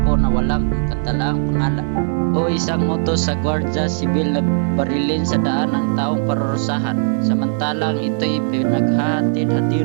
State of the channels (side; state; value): left; silent; digital silence